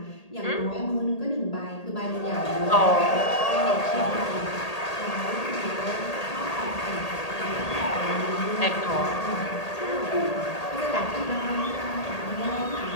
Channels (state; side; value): late; right; 1.8 ms